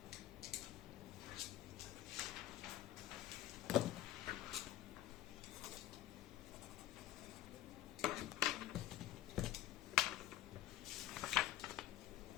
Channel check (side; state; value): right; quieter; 13.7 dB